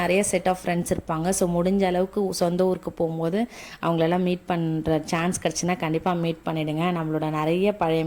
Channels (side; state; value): both; identical; correlation 1.00